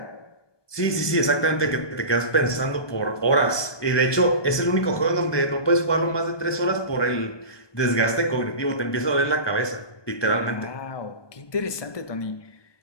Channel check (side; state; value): right; late; 1.2 ms